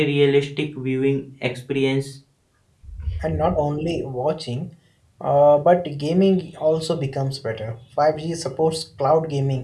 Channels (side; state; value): both; identical; correlation 1.00